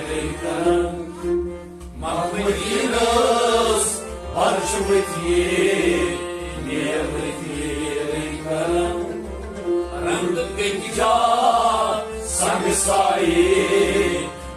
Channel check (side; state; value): both; identical; correlation 1.00